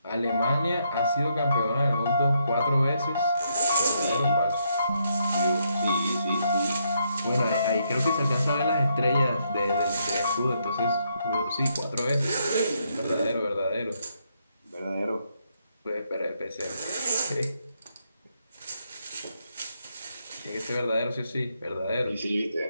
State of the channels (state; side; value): inverted; both; correlation -0.76